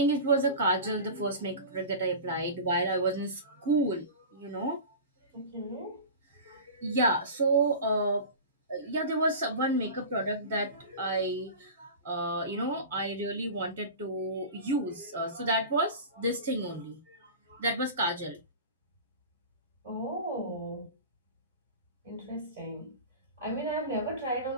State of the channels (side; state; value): both; inverted; correlation -0.32